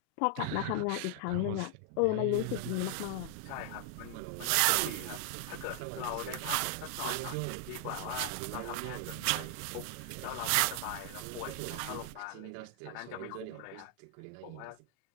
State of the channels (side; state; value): both; different; correlation 0.00